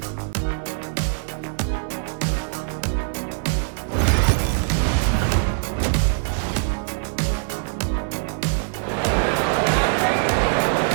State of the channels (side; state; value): left; silent; digital silence